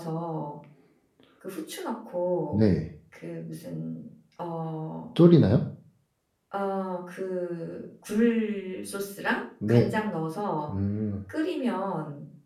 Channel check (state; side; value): identical; both; correlation 1.00